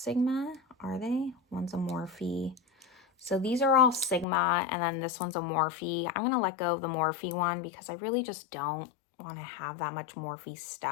are they? One's a Morphe. So these are all Sigma, and then this one's a Morphe. I'm going to let go of the Morphe one because I really just don't want to have that much Morphe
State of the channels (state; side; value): drops out; right; at 4.2 s